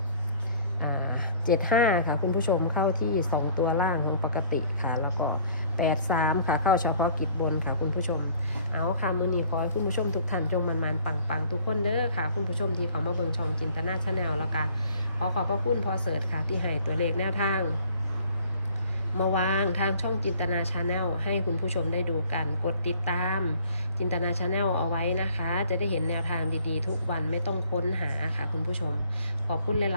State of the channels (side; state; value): both; inverted; correlation -0.55